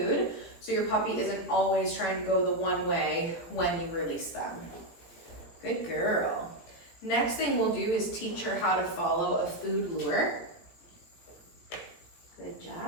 so your puppy isn't always trying to go the one way when you release them. Good girl. Next thing we'll do is teach her how to follow a food lure. Good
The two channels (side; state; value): right; late; 18 ms